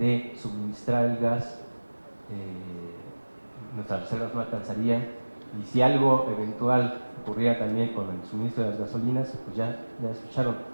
suministrar el gas, nuestras reservas no alcanzarían, y si algo eventual ocurriera también con el suministro de las gasolinas, pues ya escucharon,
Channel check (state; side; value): inverted; both; correlation -1.00